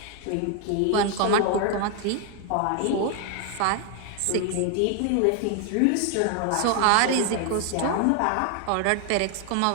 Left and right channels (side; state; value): both; different; correlation 0.00